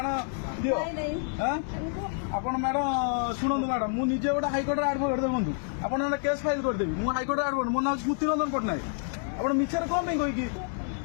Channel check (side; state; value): right; silent; 59 dB below the other